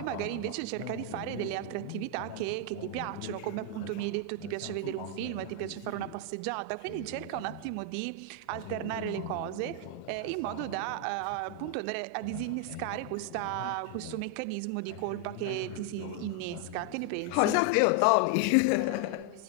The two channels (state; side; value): different; both; correlation 0.00